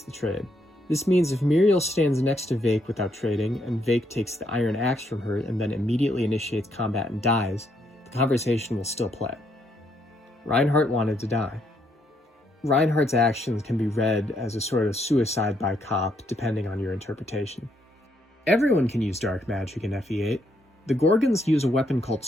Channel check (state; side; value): normal; both; correlation 0.74